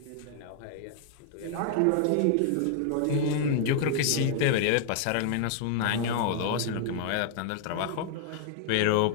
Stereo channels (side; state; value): both; different; correlation -0.01